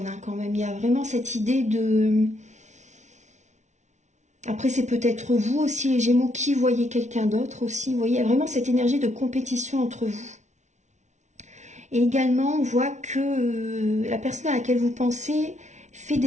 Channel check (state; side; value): late; left; 0.34 ms